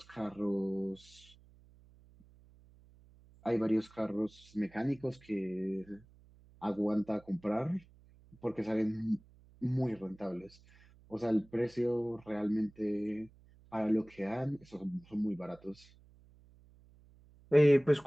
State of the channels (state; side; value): noise; right; hum, 26 dB below the sound